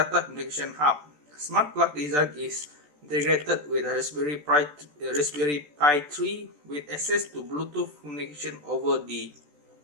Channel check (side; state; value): left; late; 14 ms